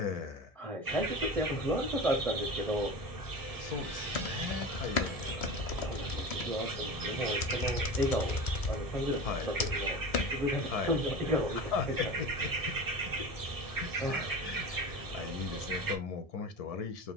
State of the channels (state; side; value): late; right; 1.7 ms